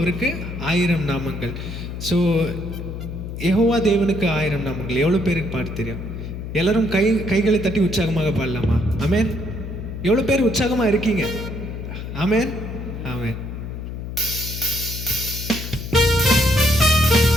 ஆயிரம் நாமங்கள். ஸோ யெகோவா தேவனுக்கு ஆயிரம் நாமங்கள். எவ்வளோ பேருக்கு பாட்டு தெரியும்? எல்லாரும் கைகளை தட்டி உற்சாகமாக பாடலாமா? ஆமென். எவ்வளோ பேர் உற்சாகமாக இருக்கீங்க? ஆமென், ஆமென்.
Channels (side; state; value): left; noise; hum, 7 dB below the sound